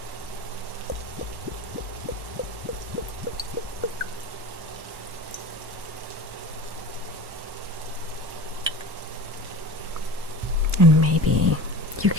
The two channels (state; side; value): late; left; 1.1 ms